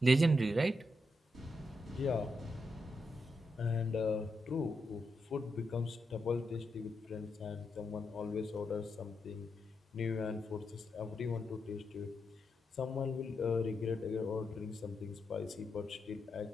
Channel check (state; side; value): normal; both; correlation 0.84